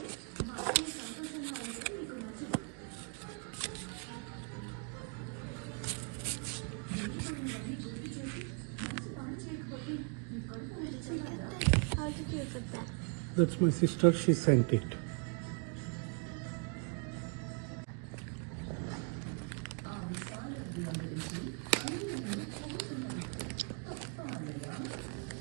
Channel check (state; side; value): quieter; left; 37.7 dB